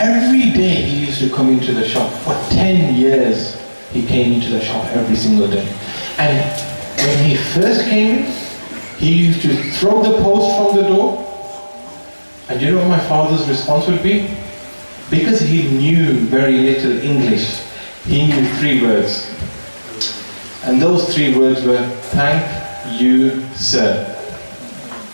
day he used to come into the shop. For 10 years, he came into the shop every single day. And when he first came in, he used to throw the post from the door. And you know what my father's response would be? Because he knew very little English, he knew 3 words. And those 3 words were, thank you, sir.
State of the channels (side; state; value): both; inverted; correlation -1.00